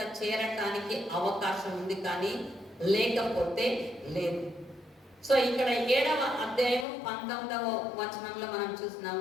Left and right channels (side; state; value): right; drops out; at 6.9 s